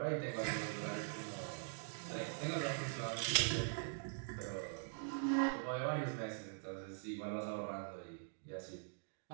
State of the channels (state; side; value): silent; left; digital silence